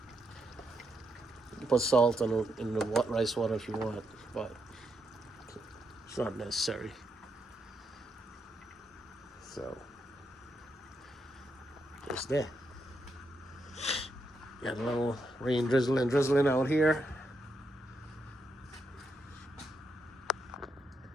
You can put salt in the rice water if you want, but it's not necessary. So, just there. Got a little rain drizzling out here.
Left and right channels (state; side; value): normal; both; correlation 0.81